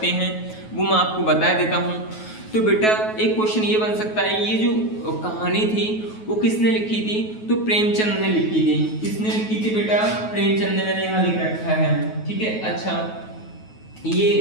हैं वो मैं आपको बता देता हूँ। तो बेटा एक क्वेश्चन ये बन सकता है, ये जो कहानी थी वो किसने लिखी थी? तो प्रेमचंद ने लिखी थी। किसने लिखी थी बेटा? प्रेमचंद ने, मैंने यहाँ लिख रखा है, ठीक है। अच्छा,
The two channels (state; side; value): late; right; 9.3 ms